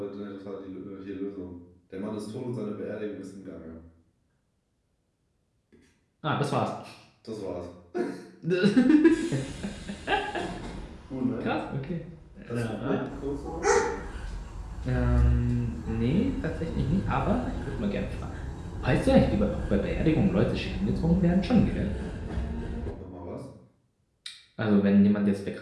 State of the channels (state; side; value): identical; both; correlation 1.00